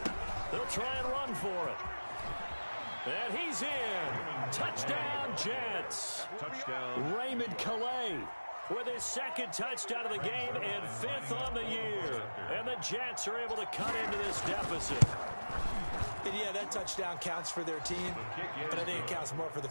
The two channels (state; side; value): inverted; both; correlation -1.00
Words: They'll try and run for it. And he's in. Touchdown, Jets. Touchdown. Raymond Calais with his 2nd touchdown of the game and 5th on the year. And the Jets are able to cut into this deficit. And yeah, that touchdown counts for their team, but I think it counts more for the